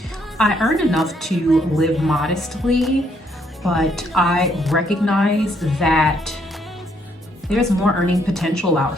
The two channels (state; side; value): normal; both; correlation 0.71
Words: I earn enough to live modestly, but I recognize that there's more earning potential out